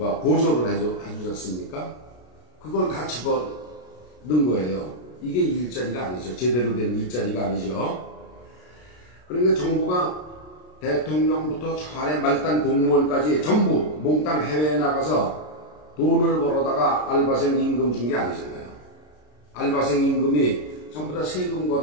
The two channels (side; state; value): right; late; 33 ms